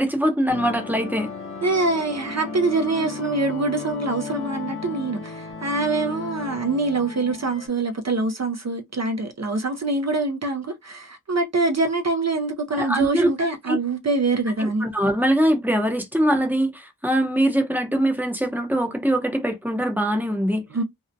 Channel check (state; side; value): normal; both; correlation 0.47